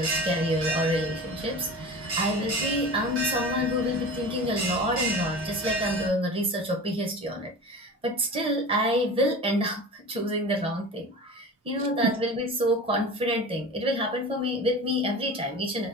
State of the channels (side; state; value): both; normal; correlation 0.34